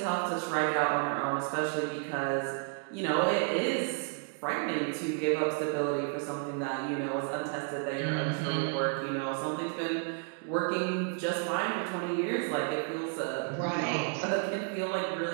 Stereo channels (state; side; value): quieter; left; 39.1 dB